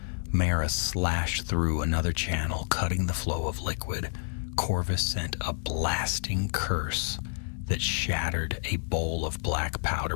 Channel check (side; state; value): right; silent; digital silence